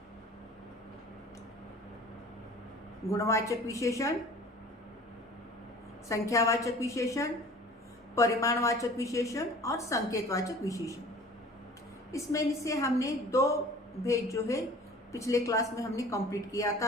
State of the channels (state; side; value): normal; both; correlation 0.45